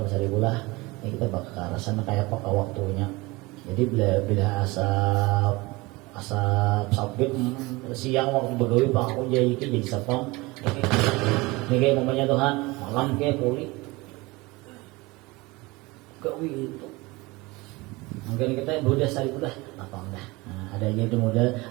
bulah. Ini kita bakal rasanya kayak apa waktunya. Jadi bila asap sabit siang waktu begawi Pak aku jadi sapang. Ini kayak umpamanya Tuhan malam kayak kulit gawi itu mungkin kita udah sari udah apa enggak ada aja itu modal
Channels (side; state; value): left; quieter; 22.9 dB